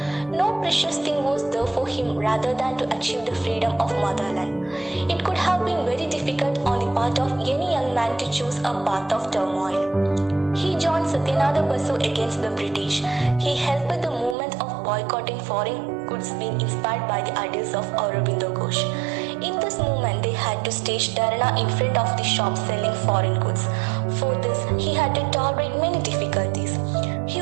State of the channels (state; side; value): drops out; left; at 14.4 s